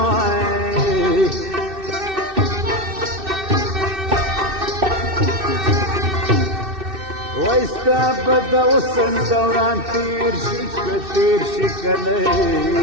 وای ستا به د حسن دوران تیر شي که تیر شي که نه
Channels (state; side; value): late; left; 2.6 ms